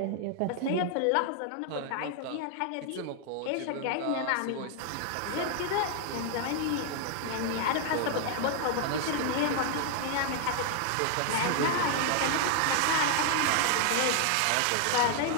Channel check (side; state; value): both; different; correlation 0.00